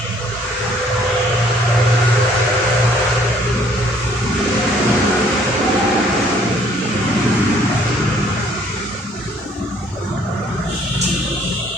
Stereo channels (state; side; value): normal; both; correlation 0.61